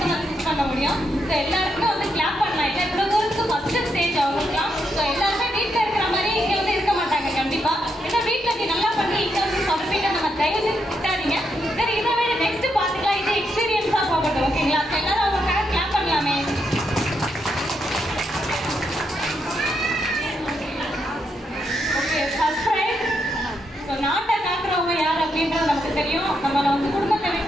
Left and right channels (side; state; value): both; normal; correlation 0.80